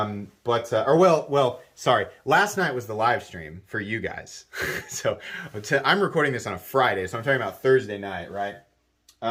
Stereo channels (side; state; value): both; identical; correlation 1.00